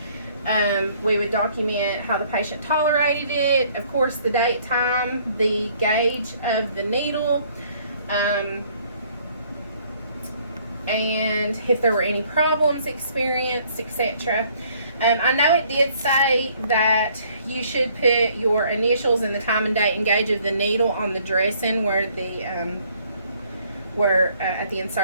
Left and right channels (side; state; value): both; inverted; correlation -0.62